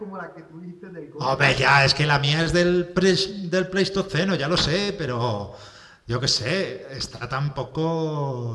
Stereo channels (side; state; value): both; identical; correlation 1.00